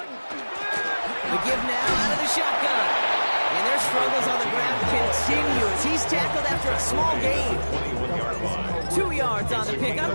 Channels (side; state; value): both; inverted; correlation -1.00